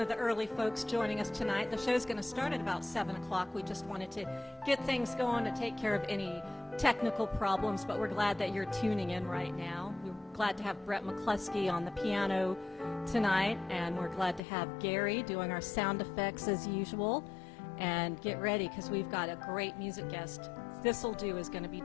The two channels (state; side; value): drops out; right; at 14.4 s